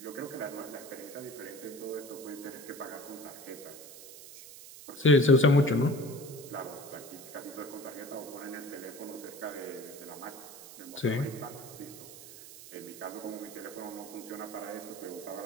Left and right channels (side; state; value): right; noise; hiss, 15 dB below the sound